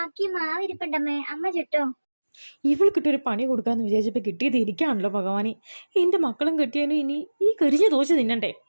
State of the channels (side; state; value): both; inverted; correlation -1.00